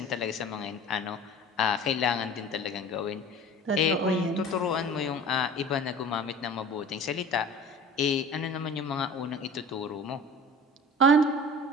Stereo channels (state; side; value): normal; both; correlation 0.40